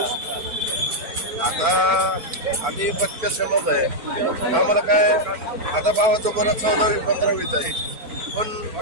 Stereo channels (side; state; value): left; late; 4.4 ms